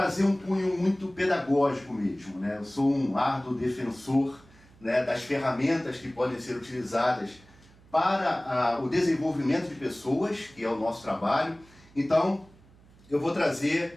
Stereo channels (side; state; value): right; noise; hum, 26 dB below the sound